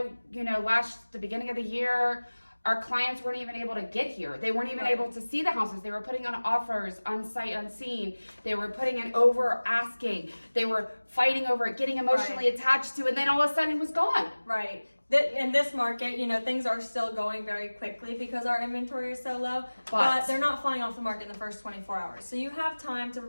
the beginning of the year, our clients weren't even able to get here. They weren't even able to see the houses. They were putting on offers on sight unseen. They were putting in over asking. They were fighting over it, getting emotionally attached to it, and then all of a sudden it was gone. Right. In this market, things are still going very quickly because our inventory is so low, but they're not flying off the market in the first 24 hours. So you have time to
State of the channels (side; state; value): both; inverted; correlation -1.00